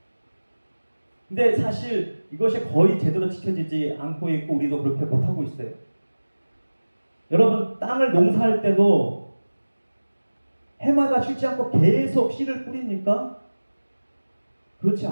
근데 사실 이것이 거의 제대로 지켜지지 않고 있고 우리도 그렇게 못하고 있어요. 여러분, 땅을 농사할 때도 해마다 쉬지 않고 계속 씨를 뿌립니까? 그렇지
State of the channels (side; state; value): both; inverted; correlation -1.00